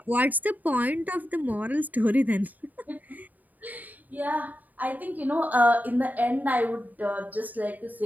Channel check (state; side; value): late; left; 0.081 ms